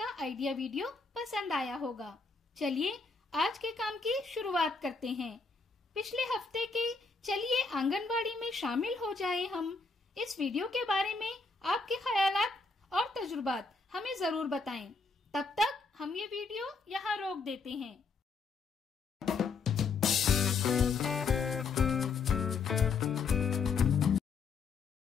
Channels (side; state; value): right; quieter; 4.4 dB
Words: आइडिया वीडियो पसंद आया होगा। चलिए आज के काम की शुरुआत करते हैं। पिछले हफ्ते के चलिए आंगनबाड़ी में शामिल हो जाए हम। इस वीडियो के बारे में आपके ख्यालात और तजुर्बात हमें जरूर बताएं। तब तक हम ये वीडियो यहाँ रोक देते हैं।